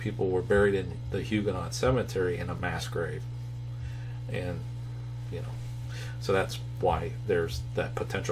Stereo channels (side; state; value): both; identical; correlation 1.00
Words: were buried in the Huguenot Cemetery in a mass grave. And, you know, so that's why there's that